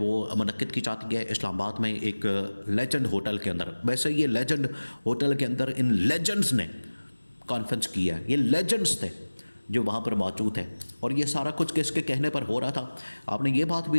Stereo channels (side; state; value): both; inverted; correlation -1.00